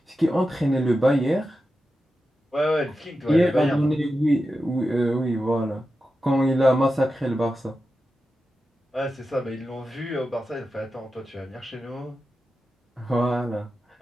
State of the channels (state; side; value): normal; both; correlation 0.91